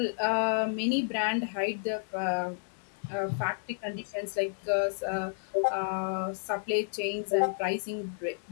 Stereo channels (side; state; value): right; silent; digital silence